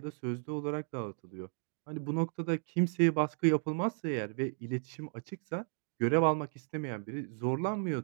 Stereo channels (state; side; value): silent; left; 55 dB below the other